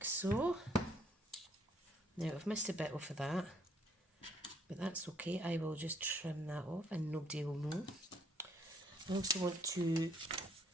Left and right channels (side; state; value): both; normal; correlation 0.66